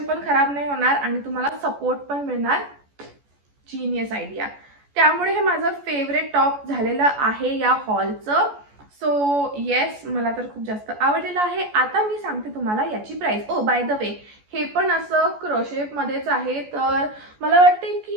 पण खराब नाही होणार आणि तुम्हाला सपोर्ट पण मिळणार. Genius idea. त्यामुळे हे माझं फेवरेट टॉप झालेलं आहे या हॉलचं. सो येस, मला तर खूप जास्त आवडलेलं आहे. आता मी सांगते तुम्हाला याची price. Oh by the way, हे पण असं क्रोशेप मध्येच आहे. तर मला वाटते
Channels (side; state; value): left; late; 14 ms